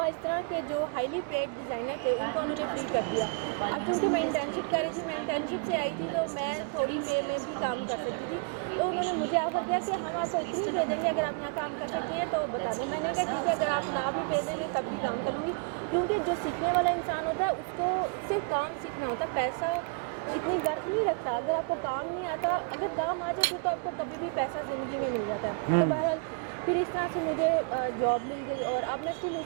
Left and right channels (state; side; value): quieter; left; 35.8 dB